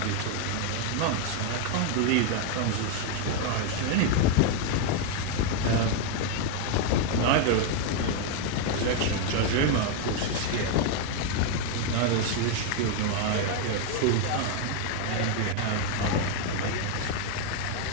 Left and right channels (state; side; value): different; both; correlation 0.01